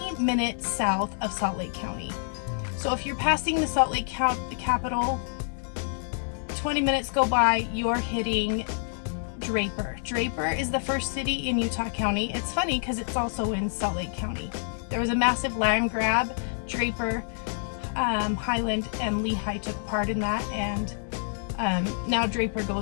minutes south of Salt Lake County. So if you're passing the Salt Lake County, the capital, 20 minutes go by, you're hitting Draper. Draper is the first city in Utah County. It's funny because it's also in Salt Lake County. There was a massive land grab. Draper, Highland, and Lehi took part in that, and now Draper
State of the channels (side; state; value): right; silent; digital silence